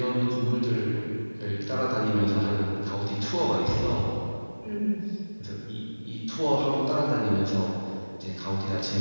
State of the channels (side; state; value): both; inverted; correlation -1.00